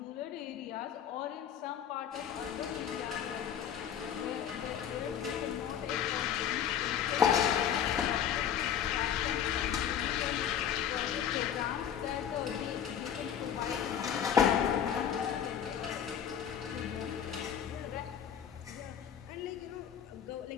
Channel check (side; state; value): right; quieter; 9.0 dB